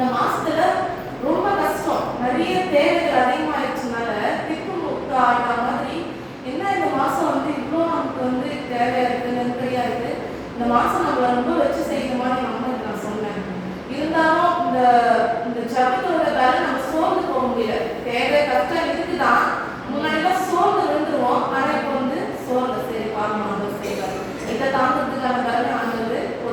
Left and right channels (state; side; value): identical; both; correlation 1.00